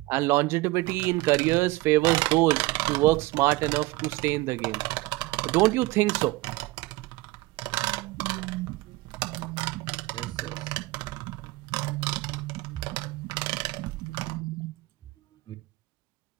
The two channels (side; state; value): left; quieter; 20.6 dB